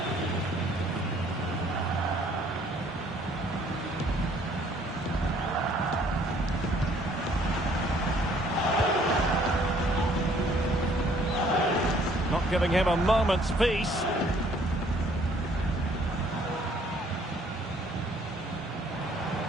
Not giving him a moment's peace.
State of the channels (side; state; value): both; normal; correlation 0.61